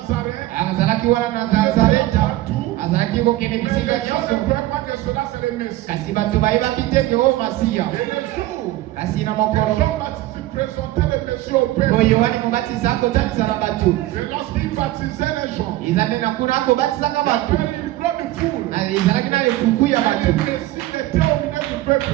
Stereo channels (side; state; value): left; quieter; 16.3 dB